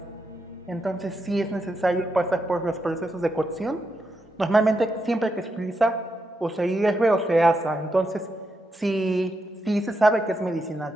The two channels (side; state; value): both; normal; correlation 0.83